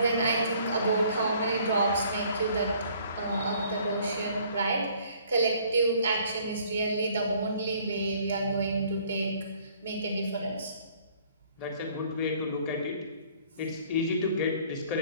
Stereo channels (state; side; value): inverted; both; correlation -0.58